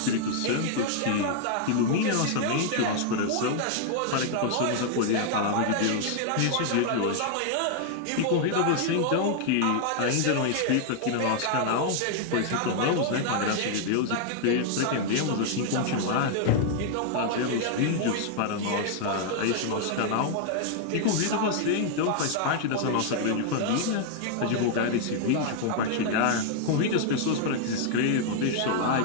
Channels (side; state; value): both; different; correlation 0.00